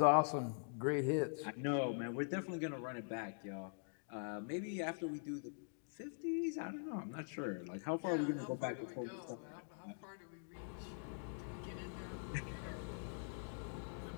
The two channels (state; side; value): silent; right; digital silence